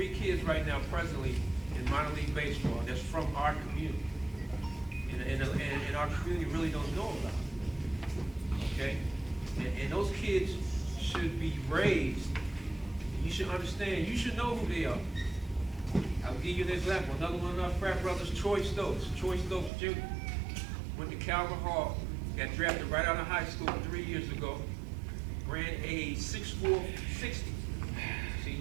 kids right now presently in minor league baseball that's from our community. And our community really don't know about it. Okay? And those kids should be raised. You should understand, you should know who they are. I'll give you an example. Another one of our frat brothers, Troy Stokes Jr. Went to Calvin Hall, got drafted right out of high school 3 years ago, ran a 6'4", 60.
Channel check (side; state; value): left; drops out; at 19.7 s